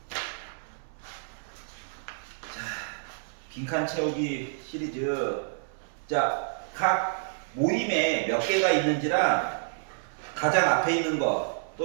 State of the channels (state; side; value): silent; left; 59 dB below the other